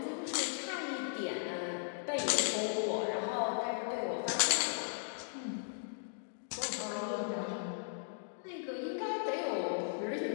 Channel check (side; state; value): right; silent; digital silence